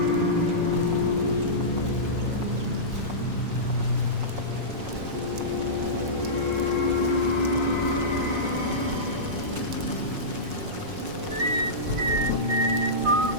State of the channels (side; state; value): left; late; 5.5 ms